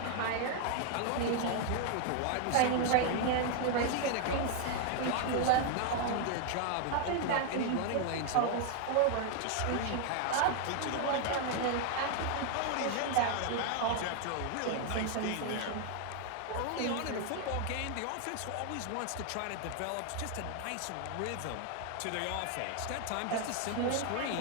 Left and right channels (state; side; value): different; both; correlation 0.00